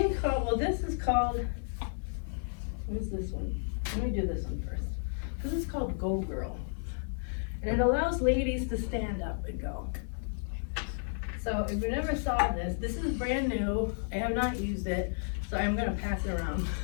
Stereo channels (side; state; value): right; silent; 56 dB below the other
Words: called, this is called, what is this one? Let me do this one first. This is called Go Girl. And it allows ladies to stand up and go. So if you never saw this is brand new. I have not used it, so I'm gonna pass it around